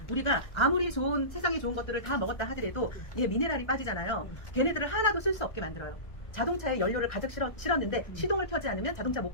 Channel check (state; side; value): late; right; 1.3 ms